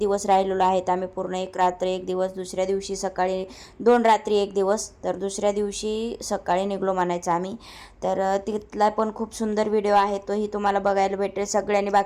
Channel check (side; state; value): both; identical; correlation 1.00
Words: राहिलेलो आहेत आम्ही, पूर्ण 1 रात्र 1 दिवस, दुसऱ्या दिवशी सकाळी 2 रात्री 1 दिवस, तर दुसऱ्या दिवशी सकाळी निघलो म्हणायचं आम्ही. तर तिथला पण खूप सुंदर व्हिडिओ आहे, तोही तुम्हाला बघायला भेटेल. सगळ्यांनी